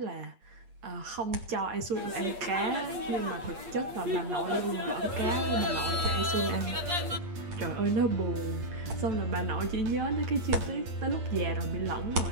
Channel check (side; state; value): left; late; 8.4 ms